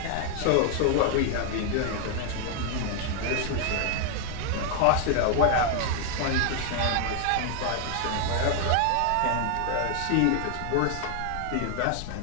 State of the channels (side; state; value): both; different; correlation 0.00